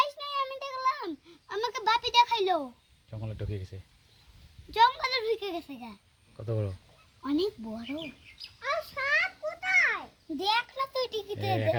জঙ্গলে ঢুকে গেছে। জঙ্গলে ঢুকে গেছে গা। কত বড়? অনেক বড়। আর সাপ কোথায়? দেখ না তুই টিকিতে। একা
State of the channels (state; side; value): identical; both; correlation 1.00